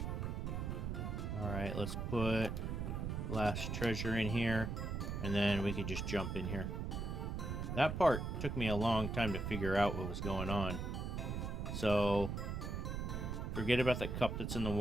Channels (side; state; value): right; noise; rumble, 3 dB below the sound